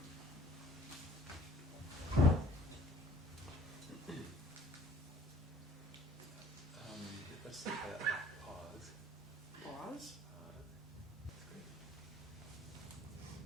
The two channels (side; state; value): both; normal; correlation 0.54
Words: Let's take a pause. Pause? That's great.